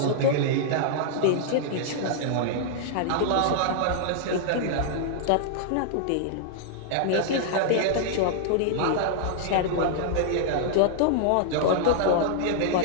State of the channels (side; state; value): both; different; correlation -0.01